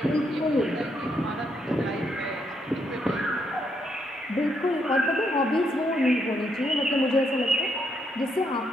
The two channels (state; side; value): normal; both; correlation 0.76